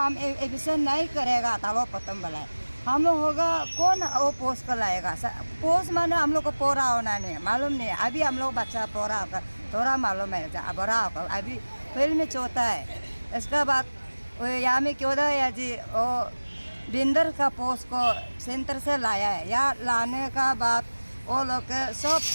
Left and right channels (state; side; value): inverted; both; correlation -1.00